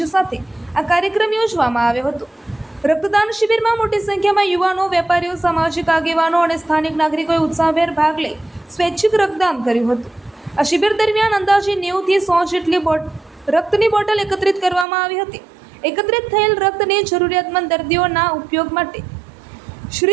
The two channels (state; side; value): drops out; left; at 14.9 s